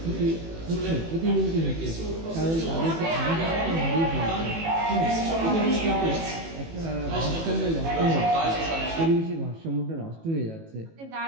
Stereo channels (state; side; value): late; left; 18 ms